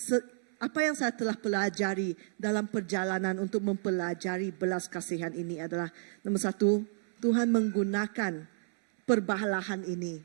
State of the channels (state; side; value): silent; left; 57 dB below the other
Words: apa yang saya telah pelajari dalam perjalanan untuk mempelajari belas kasihan ini adalah, nomor satu, Tuhan menggunakan perbalahan ini.